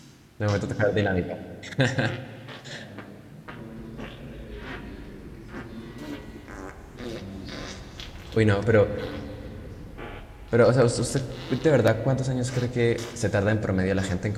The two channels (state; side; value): identical; both; correlation 1.00